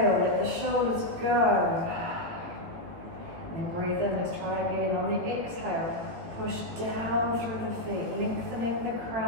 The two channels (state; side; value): late; left; 18 ms